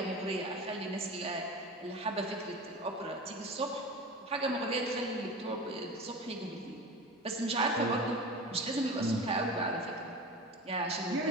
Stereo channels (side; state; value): both; normal; correlation 0.32